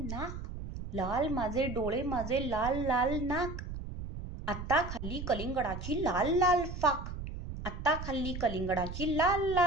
नाक लाल माझे डोळे माझे लाल लाल नाक आत्ता खाल्ली कलिंगडाची लाल लाल फाक आत्ता खाल्ली कलिंगडाची लाल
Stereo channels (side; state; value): right; noise; rumble, 8 dB below the sound